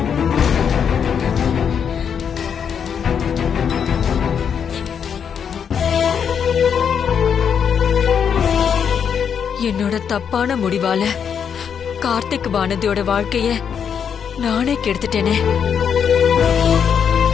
என்னோட தப்பான முடிவால கார்த்திக் வானதியோட வாழ்க்கைய நானே கெடுத்துட்டேனே.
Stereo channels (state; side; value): quieter; right; 7.5 dB